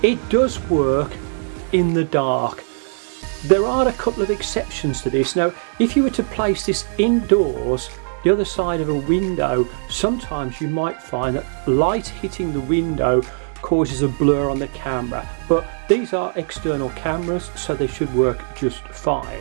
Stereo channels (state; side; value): silent; left; 65 dB below the other